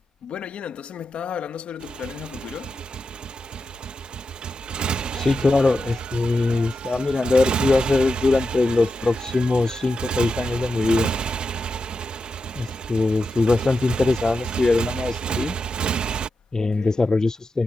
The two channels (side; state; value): both; normal; correlation 0.89